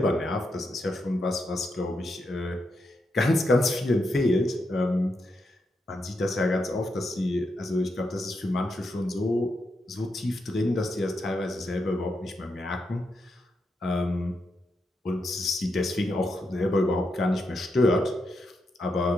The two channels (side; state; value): both; normal; correlation 0.83